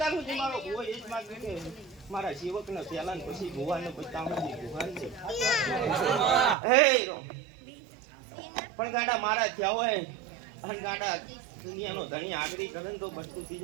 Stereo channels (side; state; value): left; drops out; at 6.6 s